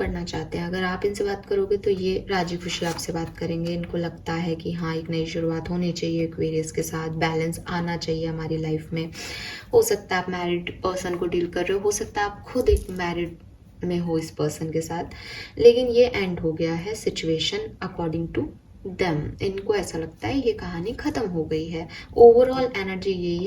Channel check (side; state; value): both; identical; correlation 1.00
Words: चाहते हैं, अगर आप इनसे बात करोगे तो ये राजी खुशी आपसे बात करेंगे। इनको लगता है कि हाँ एक नई शुरुआत होनी चाहिए, एक्वेरियस के साथ बैलेंस आना चाहिए हमारी लाइफ में। हो सकता है आप मैरिड पर्सन को डील कर रहे हो, हो सकता है आप खुद एक मैरिड में हो इस पर्सन के साथ, लेकिन ये एंड हो गया है सिचुएशन अकॉर्डिंग टू दम। इनको ऐसा लगता है ये कहानी खत्म हो गई है, ओवरऑल एनर्जी यही